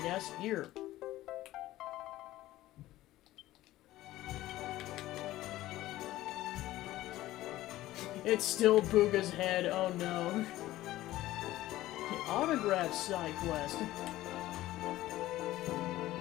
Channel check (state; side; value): quieter; right; 15.8 dB